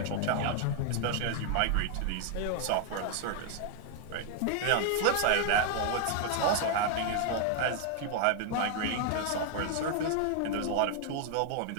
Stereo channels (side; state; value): both; different; correlation 0.00